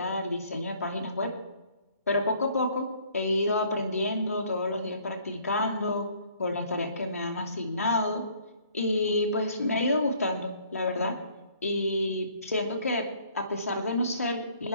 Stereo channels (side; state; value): both; inverted; correlation -0.60